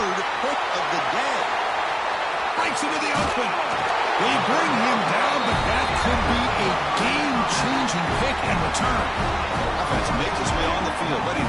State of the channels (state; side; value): identical; both; correlation 1.00